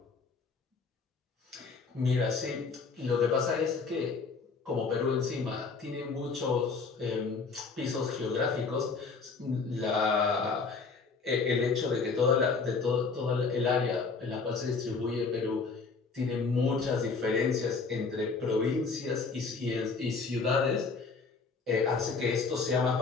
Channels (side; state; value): right; quieter; 4.6 dB